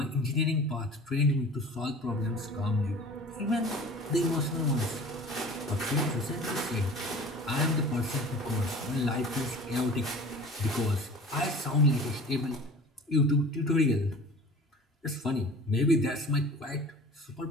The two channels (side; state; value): both; normal; correlation 0.42